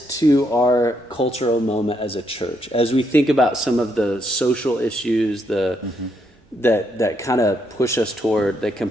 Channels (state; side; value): normal; both; correlation 0.76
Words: to our cultural moment as a church, as we think about some of the social issues, that kind of push us toward, that